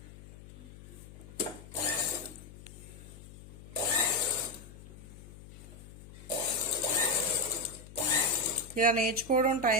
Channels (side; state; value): left; noise; hum, 17 dB below the sound